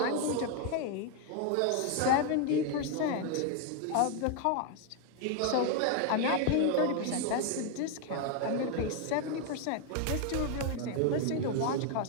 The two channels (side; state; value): both; different; correlation 0.01